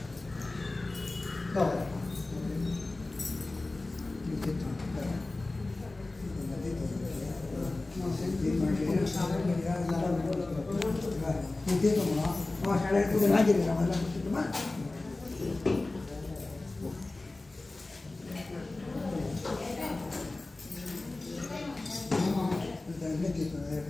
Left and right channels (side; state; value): right; quieter; 3.1 dB